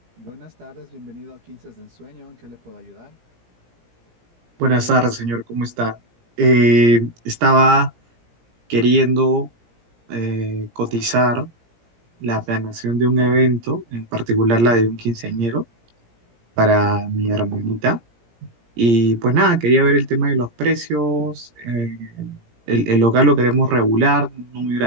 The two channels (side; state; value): left; late; 17 ms